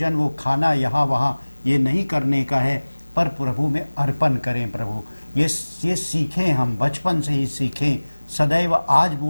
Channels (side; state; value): both; inverted; correlation -1.00